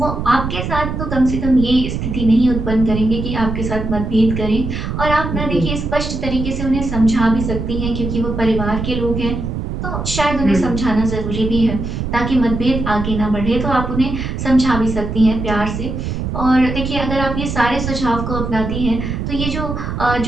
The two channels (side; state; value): right; noise; rumble, 4 dB below the sound